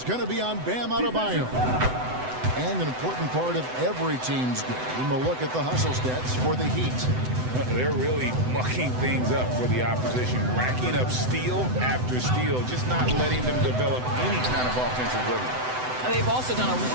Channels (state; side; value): late; left; 7.9 ms